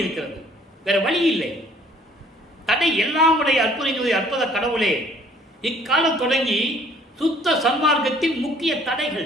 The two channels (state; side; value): normal; both; correlation 0.58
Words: இருக்கிறது. வேற வழி இல்லை. தடை எல்லாம் உடைய அற்புத கடவுளே. இக்காலம் தொடங்கி சுத்த சன்மார்க்கத்தின் முக்கிய